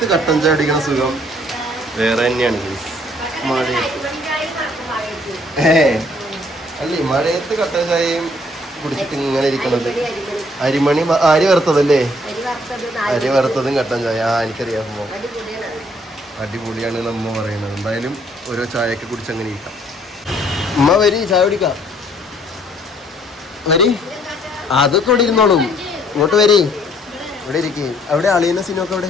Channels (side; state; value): both; normal; correlation 0.63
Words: കട്ടൻ ചായ അടിക്കുന്ന സുഖം വേറെ തന്നെയാണ്. അല്ലേ മഴയത്ത് കട്ടൻ ചായയും കുടിച്ചിട്ട് ഇങ്ങനെ ഇരിക്കണത്. അരിമണി അരി വറുത്തതല്ലേ? അരി വറുത്തതും കട്ടൻ ചായ. എനിക്കറിയാം, അടിപൊളിയാണ് നമ്മ പറയണത്. എന്തായാലും ഓരോ ചായയൊക്കെ കുടിച്ച് അങ്ങനെ ഇരിക്കാം. ഉമ്മ വരി, ചായ കുടിക്കാം. വരി, അതൊക്കെ ഇവിടെ ഇരുന്നോളും. ഇങ്ങോട്ട് വരി, ഇവിടെ ഇരിക്കേ. അവിടെ അളിയുന്ന സിനൊക്കെ അവിടെ